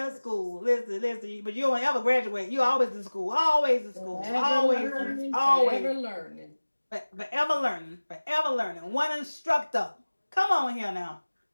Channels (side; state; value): both; inverted; correlation -1.00